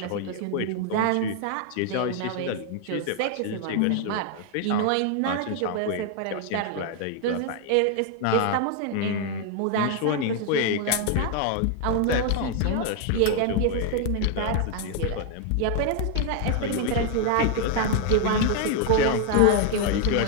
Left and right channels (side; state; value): both; different; correlation 0.00